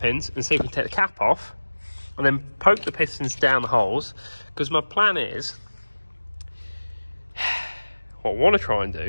and see if we can take the cap off, and then poke the pistons down the holes, because my plan is, what I want to try and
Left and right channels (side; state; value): both; inverted; correlation -1.00